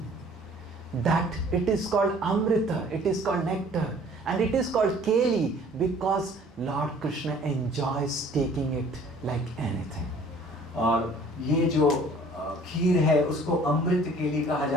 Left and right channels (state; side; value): normal; both; correlation 0.53